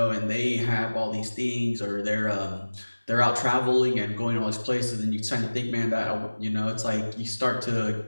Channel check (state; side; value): inverted; both; correlation -1.00